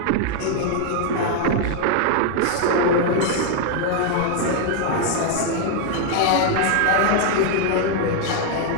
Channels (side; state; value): both; different; correlation 0.00